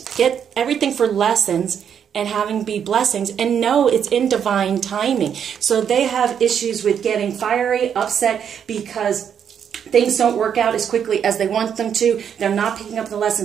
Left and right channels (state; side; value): quieter; left; 8.2 dB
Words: get everything for lessons and having be blessings, and know it's in divine timing. So they have issues with getting fiery, upset, because things don't work out as quickly as they want them to. They're not picking up the